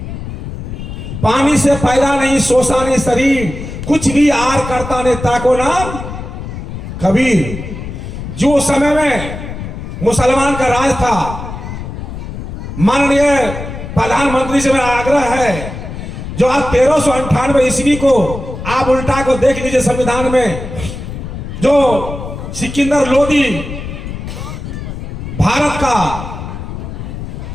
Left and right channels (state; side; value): noise; left; rumble, 8 dB below the sound